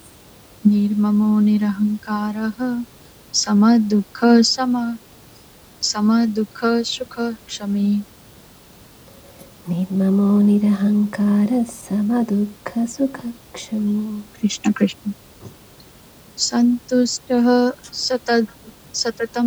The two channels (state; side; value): identical; both; correlation 1.00